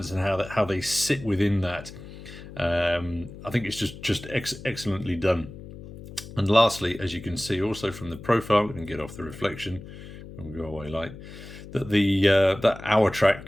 in how they sit within that. I think it's just excellently done. And lastly, as you can see also from the profile, and get off the reflection, and we'll go away light, that that hour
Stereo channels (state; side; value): noise; left; hum, 14 dB below the sound